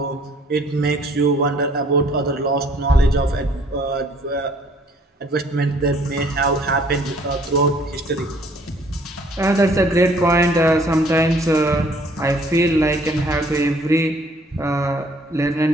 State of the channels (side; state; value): both; normal; correlation 0.59